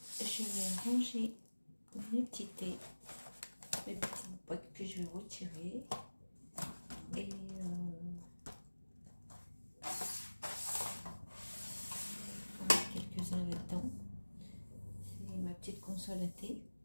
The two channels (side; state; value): both; inverted; correlation -1.00